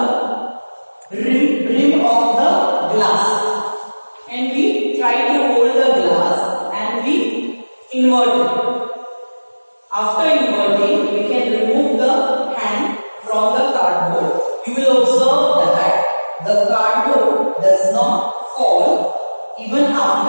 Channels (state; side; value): inverted; both; correlation -1.00